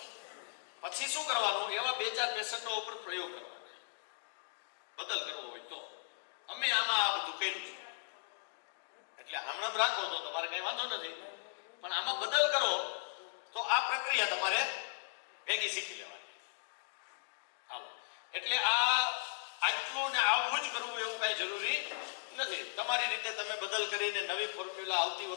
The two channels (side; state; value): right; silent; digital silence